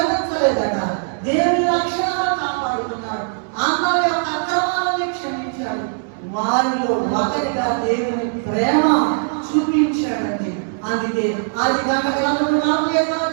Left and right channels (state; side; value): silent; left; 66 dB below the other